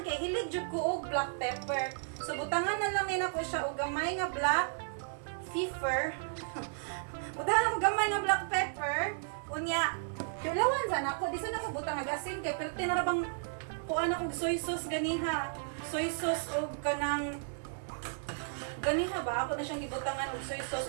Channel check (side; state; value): left; silent; 55 dB below the other